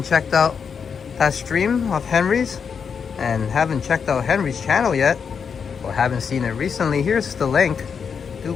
checked out that stream of Henry's and haven't checked out Henry's channel yet, or haven't seen it recently, here's the link.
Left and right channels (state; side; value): quieter; right; 6.4 dB